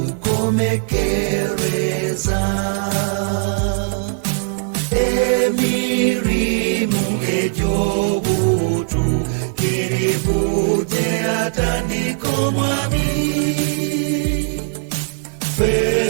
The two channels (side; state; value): left; silent; digital silence